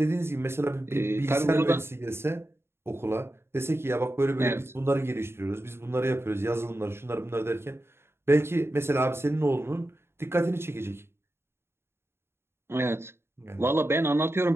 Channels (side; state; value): left; late; 0.12 ms